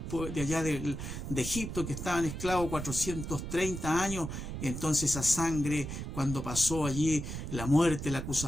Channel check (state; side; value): noise; right; rumble, 6 dB below the sound